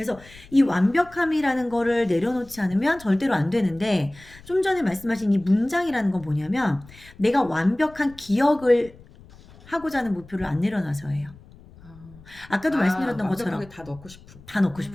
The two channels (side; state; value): left; noise; rumble, 22 dB below the sound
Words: 이 완벽함이라는 거를 내려놓지 않으면 절대로 안 되는데, 좀 전에 말씀하신 이 문장이라는 건 뭐냐면 내가 완벽한 기억을 하고자 하는 목표를 안 내려놔서예요. 아까도 말씀드렸던 것처럼 완벽하게 다 넣고 싶은. 다 넣고